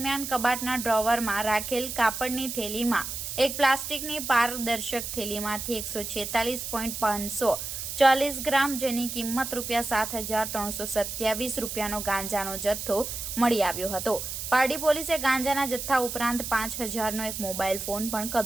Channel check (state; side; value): noise; right; hiss, 6 dB below the sound